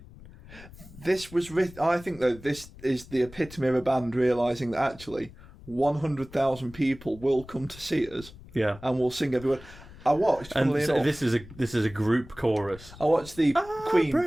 This was written. I think though this is the epitome of a band realizing that actually 100,000 people will come to see us yeah. and will sing every word. I watched. And funnily so enough, this is a group chorus. I watched the Queen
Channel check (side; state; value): left; noise; rumble, 19 dB below the sound